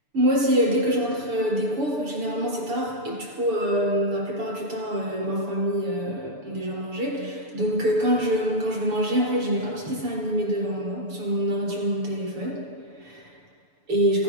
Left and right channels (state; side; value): late; left; 6.9 ms